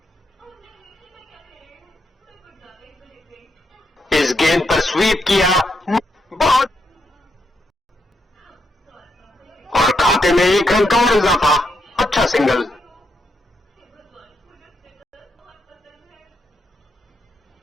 इस गेंद पर स्वीप किया, बहुत, और खाते में 1 रन का और इजाफा। अच्छा सिंगल।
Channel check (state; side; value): normal; both; correlation 0.80